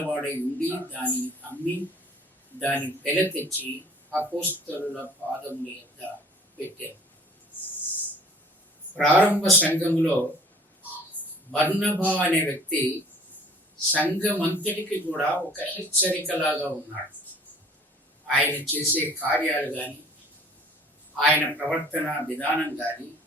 ఉండి దానిని అమ్మి దాని వెల తెచ్చి అపోస్తలుల పాదముల యొద్ద పెట్టారు. ప్రారంభ సంఘములో బర్నబా అనే వ్యక్తి సంఘమంతటికి కూడా ఒక హెచ్చరికలాగా ఉన్నాడు. ఆయన చేసే కార్యాలు కానీ, ఆయన ప్రవర్తన విధానం కానీ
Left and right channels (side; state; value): both; normal; correlation 0.51